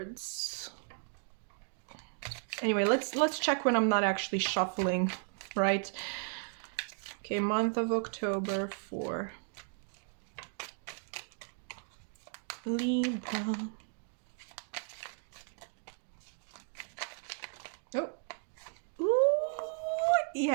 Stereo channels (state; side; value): silent; left; 54 dB below the other